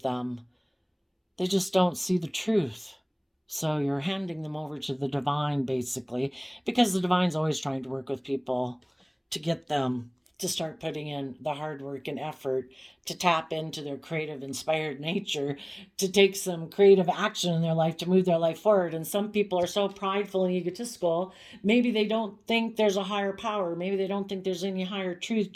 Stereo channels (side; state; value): both; identical; correlation 1.00